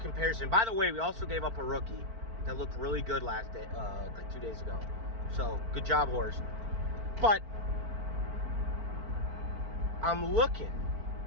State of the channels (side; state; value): left; late; 4.5 ms